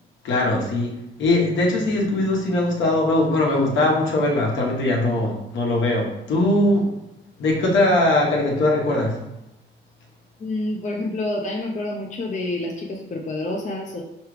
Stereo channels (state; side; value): normal; both; correlation 0.49